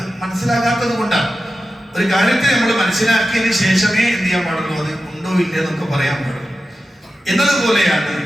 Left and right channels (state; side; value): normal; both; correlation 0.92